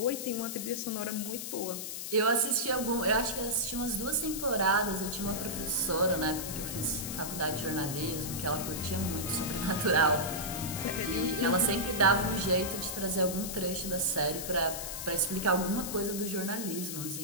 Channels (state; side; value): noise; left; hiss, 6 dB below the sound